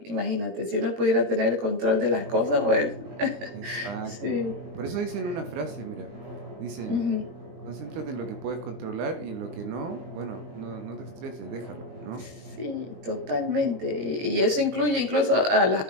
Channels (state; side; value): late; left; 20 ms